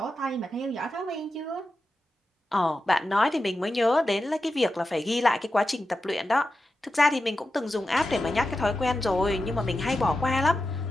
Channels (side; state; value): both; normal; correlation 0.91